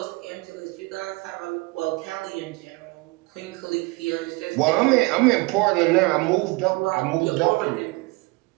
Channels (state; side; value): quieter; left; 25.3 dB